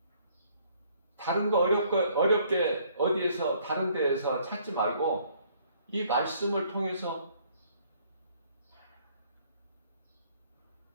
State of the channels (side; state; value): both; inverted; correlation -0.62